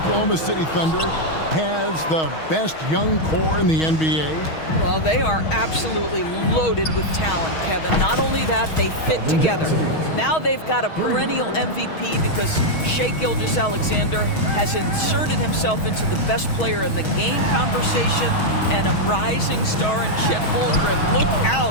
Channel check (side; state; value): right; late; 6.3 ms